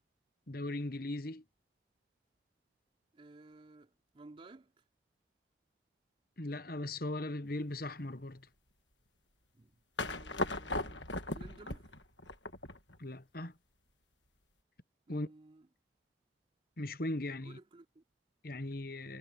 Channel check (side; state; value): both; normal; correlation 0.37